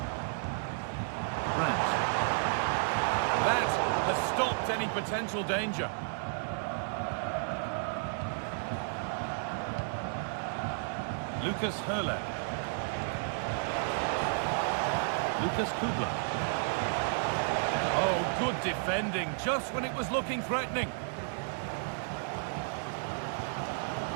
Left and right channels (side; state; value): left; silent; 56 dB below the other